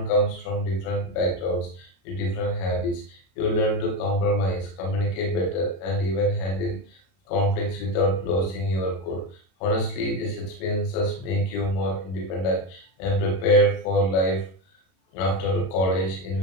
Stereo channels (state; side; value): late; right; 32 ms